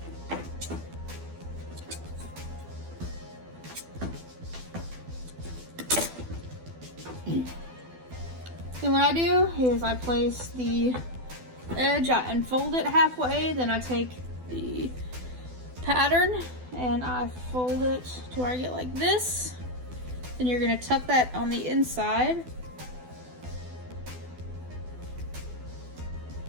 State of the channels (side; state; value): left; late; 12 ms